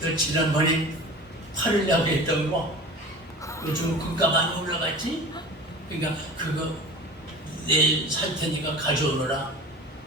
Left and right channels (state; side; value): normal; both; correlation 0.37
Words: 지난번에 팔을 내고 했던 거 요즘 금가 많이 올라갔지? 그러니까 그거 내일 살 테니까 가져오너라.